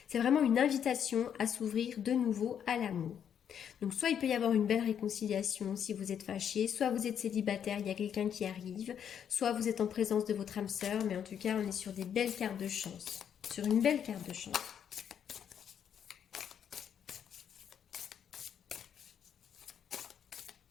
C'est vraiment une invitation à s'ouvrir de nouveau à l'amour. Donc soit il peut y avoir une belle réconciliation si vous êtes fâché, soit vous êtes célibataire, il y a quelqu'un qui arrive, soit vous êtes en présence de votre âme sœur, mais en tout cas on est sur des belles cartes de chance. Sur une belle carte de chance.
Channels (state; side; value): quieter; right; 8.6 dB